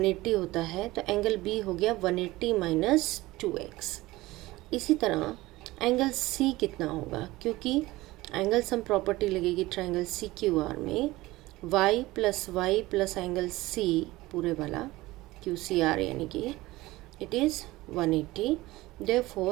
होता है, तो एंगल B हो गया 180 माइनस 2X। इसी तरह एंगल C कितना होगा, क्योंकि एंगल सम प्रॉपर्टी लगेगी ट्राइंगल CQR में y प्लस एंगल C पूरे वाला QCR यानी कि it is 180,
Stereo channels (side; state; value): left; quieter; 19.0 dB